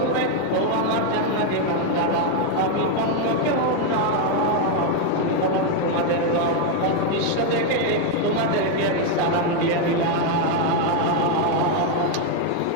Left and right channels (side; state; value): both; different; correlation 0.01